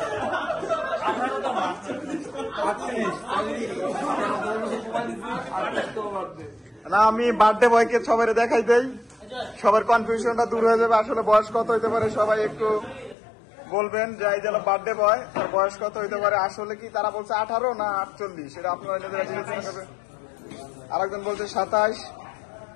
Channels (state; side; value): drops out; right; at 13.2 s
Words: না আমি বার্থডে বয়কে সবাই দেখাই দেই, সবার কনফিউশনটা দূর হয়ে যাবে। আসলে বয়স কত হইতে পারে সবাই একটু বলবেন যে এই যে বার্থডে বয় তার বয়স কত হইতে পারে। আসলে কি তারা বলছে 18 না 48, সেটা আপনারা নিজেরা বিবেচনা করবেন। আরেকজন বলছে 27।